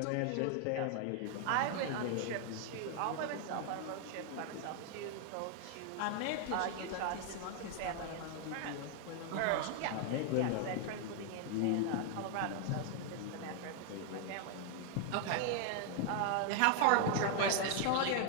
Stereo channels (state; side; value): different; both; correlation 0.00